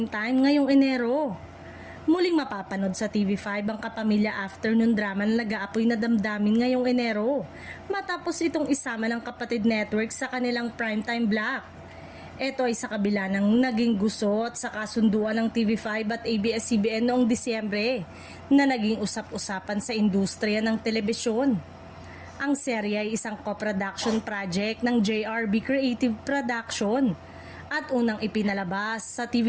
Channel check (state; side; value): identical; both; correlation 1.00